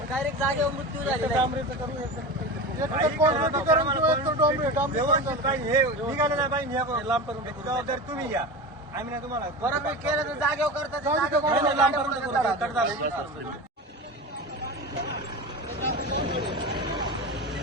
डायरेक्ट जागेवर मृत्यू झालेला आहे। जबाबदारी तुम्ही घ्या, आम्ही ना तुम्हाला बरोबर केलं तर जागेवर करतात।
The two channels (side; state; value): both; normal; correlation 0.27